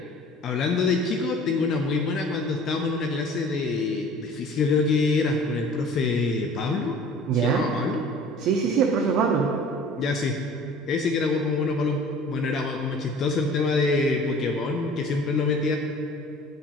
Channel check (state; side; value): normal; both; correlation 0.46